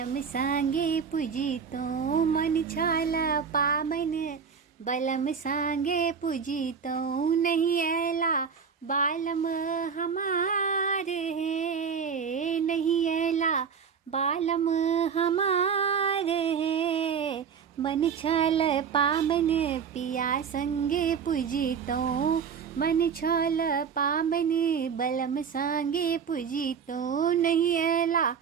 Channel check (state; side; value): quieter; left; 6.6 dB